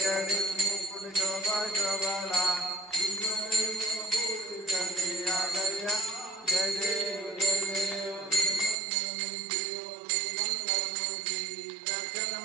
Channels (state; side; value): drops out; left; at 8.8 s